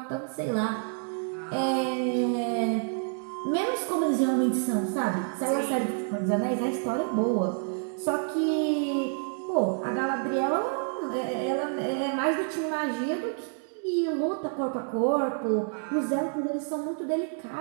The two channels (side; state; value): left; silent; 56 dB below the other